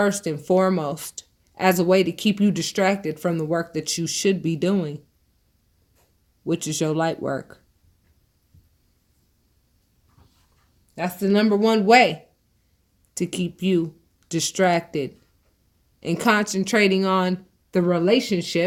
and foremost as a way to keep you distracted from the work that you should be doing, which is your light work. That's the number one way to keep you distracted and concentrating on the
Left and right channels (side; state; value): both; identical; correlation 1.00